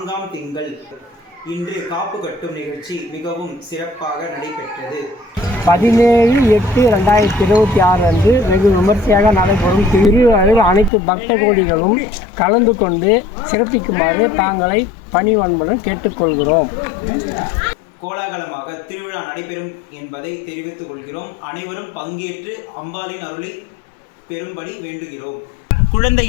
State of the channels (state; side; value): drops out; right; at 10.9 s